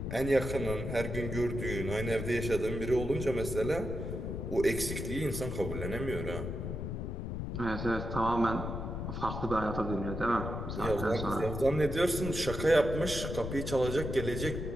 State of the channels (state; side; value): noise; left; rumble, 4 dB below the sound